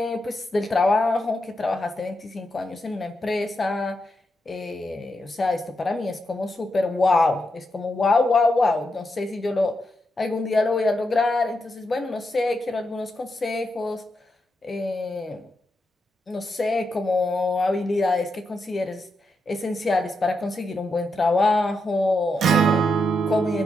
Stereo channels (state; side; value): normal; both; correlation 0.84